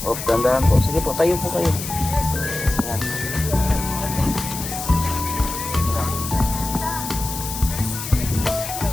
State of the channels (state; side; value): noise; left; hiss, 7 dB below the sound